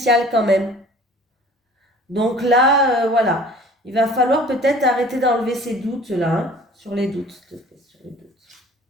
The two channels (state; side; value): normal; both; correlation 0.48